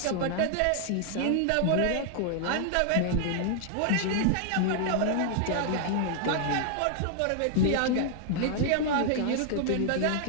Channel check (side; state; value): both; different; correlation 0.00